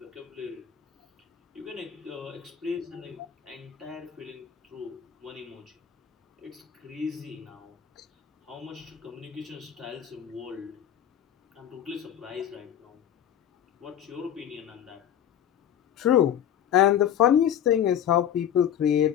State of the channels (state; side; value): quieter; right; 9.9 dB